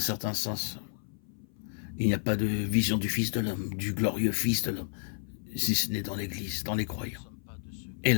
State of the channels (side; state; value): right; silent; 57 dB below the other